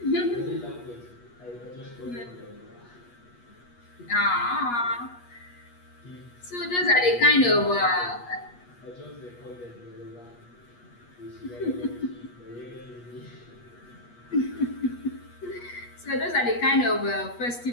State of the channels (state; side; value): late; right; 8.3 ms